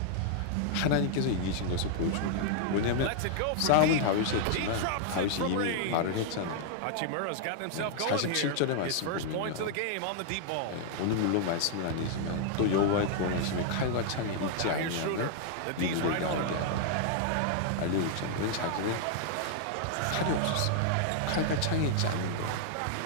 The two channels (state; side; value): different; both; correlation -0.01